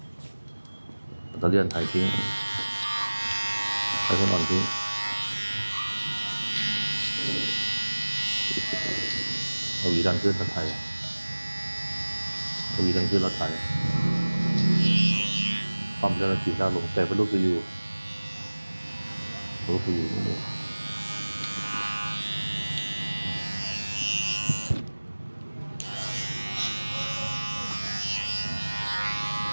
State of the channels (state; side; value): inverted; both; correlation -1.00